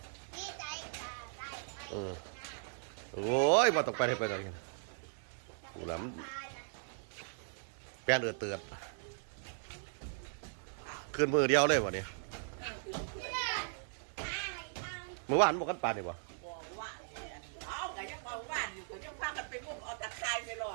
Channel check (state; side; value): silent; left; 52 dB below the other